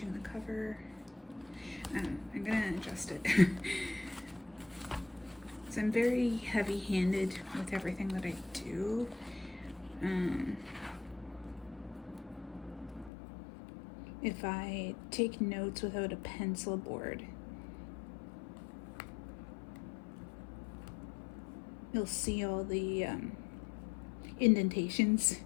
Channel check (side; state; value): right; drops out; at 13.1 s